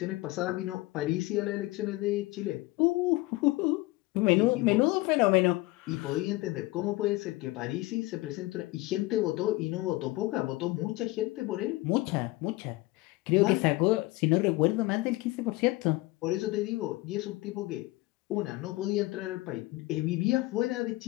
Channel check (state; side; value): quieter; right; 20.5 dB